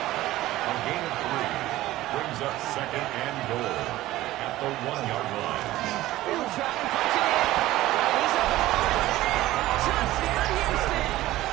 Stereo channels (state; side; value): quieter; left; 16.1 dB